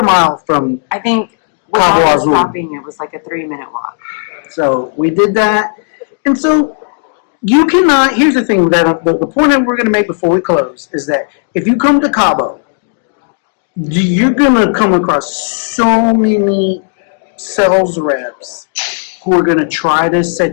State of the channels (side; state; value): right; silent; digital silence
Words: mile from I think Cabo without us Azul. stopping, it was like a 3-minute walk. So we did that, and so you cannot. Here's the thing that the point that we're going to make before we close is that if you come to Cabo, you're going to come across so many sales reps who are going to try to